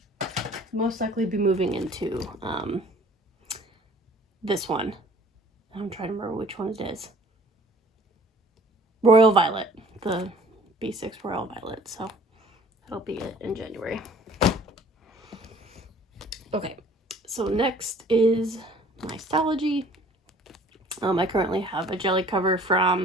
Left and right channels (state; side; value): normal; both; correlation 0.52